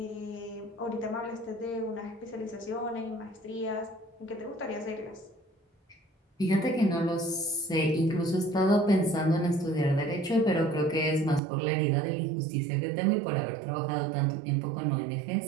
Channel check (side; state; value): left; drops out; at 11.4 s